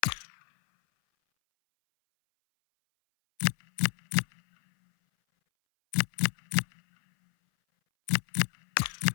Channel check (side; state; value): right; silent; 58 dB below the other